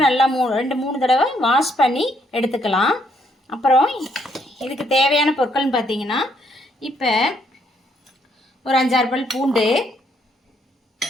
நல்லா 2-3 தடவை வாஷ் பண்ணி எடுத்துக்கலாம். அப்புறம் இதுக்கு தேவையான பொருட்கள்னு பார்த்தீங்கன்னா, இப்போ ஒரு 5-6 பல் பூண்டு,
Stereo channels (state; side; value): normal; both; correlation 0.71